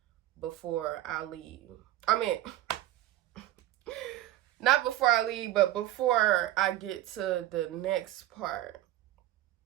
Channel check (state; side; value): quieter; left; 14.8 dB